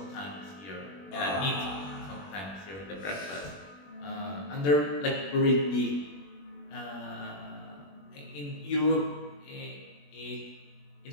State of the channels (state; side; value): late; right; 21 ms